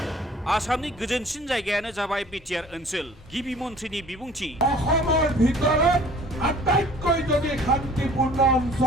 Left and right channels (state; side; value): normal; both; correlation 0.50